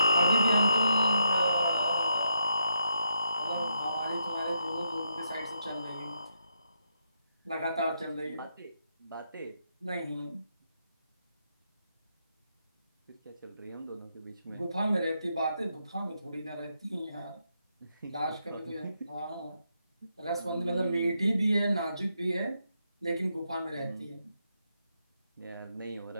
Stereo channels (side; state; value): both; inverted; correlation -0.79